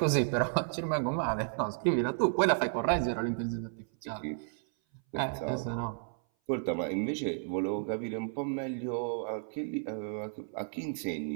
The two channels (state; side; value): silent; left; 56 dB below the other